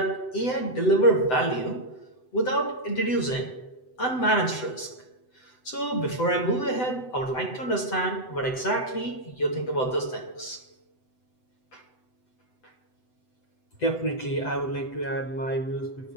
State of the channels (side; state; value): right; late; 7.9 ms